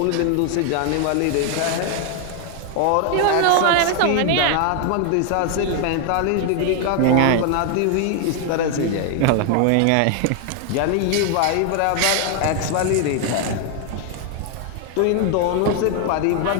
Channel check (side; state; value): both; different; correlation 0.01